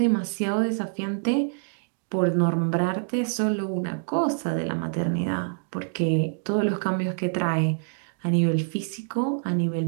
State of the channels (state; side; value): silent; left; digital silence